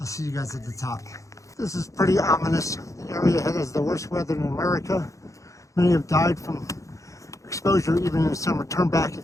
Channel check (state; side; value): late; right; 0.15 ms